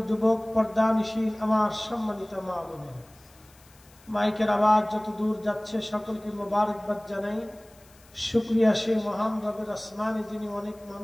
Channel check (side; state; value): left; noise; hiss, 27 dB below the sound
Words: যুবক, পর্দানিশীল আমার সম্মানিত মা বোনেরা, মাইকের আওয়াজ যত দূর যাচ্ছে সকলকে মোবারকবাদ জানাই। শুকরিয়া সেই মহান রবের আসমানে যিনি অনেক